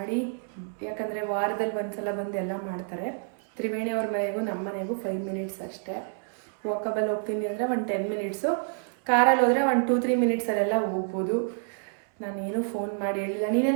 ಯಾಕಂದರೆ ವಾರದಲ್ಲಿ ಒಂದ್ಸಲ ಬಂದು ಎಲ್ಲ ಮಾಡ್ತಾರೆ. ತ್ರಿವೇಣಿ ಅವ್ರ ಮನೆಗೂ ನಮ್ಮ ಮನೆಗೂ 5 ಮಿನಿಟ್ಸ್ ಅಷ್ಟೇ. ವಾಕಬಲ್ ಹೋಗ್ತೀನಿ ಅಂದರೆ 10 ಮಿನಿಟ್ಸು, ಕಾರಲ್ಲಿ ಹೋದರೆ 2-3 ಮಿನಿಟ್ಸಲ್ಲೆಲ್ಲ ಹೋಗ್ಬೋದು. ನಾನೇನು ಫೋನ್ ಮಾಡಿ ಹೇಳಿಲ್ಲ.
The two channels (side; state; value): left; silent; 59 dB below the other